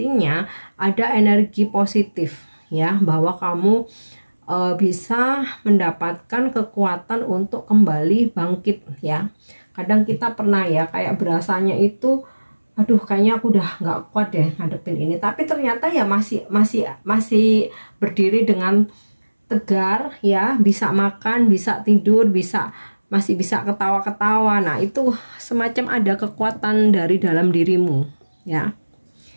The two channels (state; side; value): inverted; both; correlation -1.00